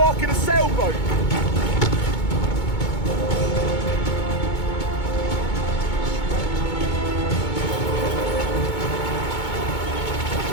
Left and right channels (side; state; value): right; late; 2.2 ms